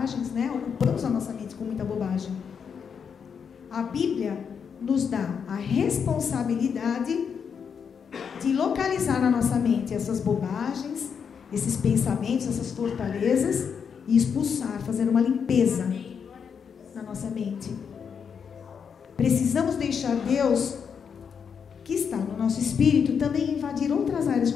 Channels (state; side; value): quieter; right; 6.8 dB